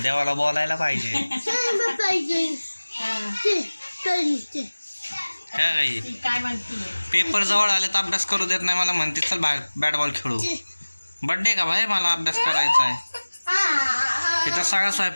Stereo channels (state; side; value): inverted; both; correlation -1.00